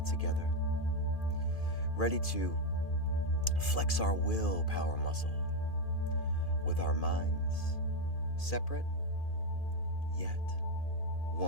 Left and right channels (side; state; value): right; late; 2.4 ms